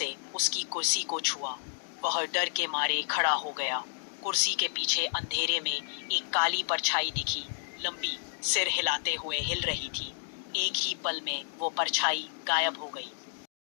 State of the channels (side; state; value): right; silent; digital silence